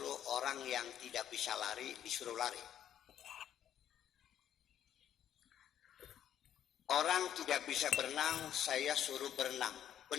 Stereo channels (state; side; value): quieter; right; 10.3 dB